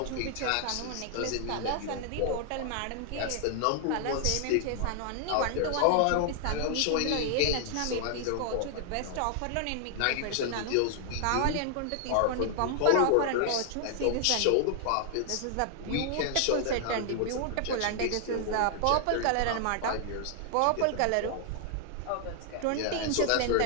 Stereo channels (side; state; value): both; different; correlation 0.00